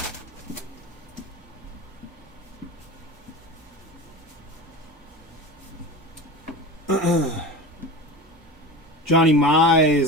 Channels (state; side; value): normal; both; correlation 0.29